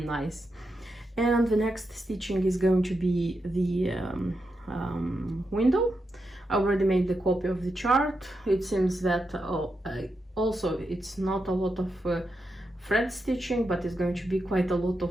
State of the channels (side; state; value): both; normal; correlation 0.86